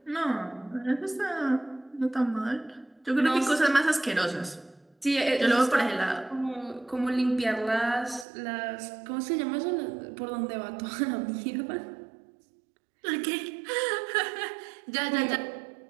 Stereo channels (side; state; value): left; drops out; at 8.2 s